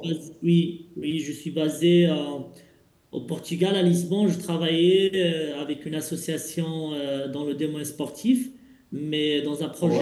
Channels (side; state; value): both; identical; correlation 1.00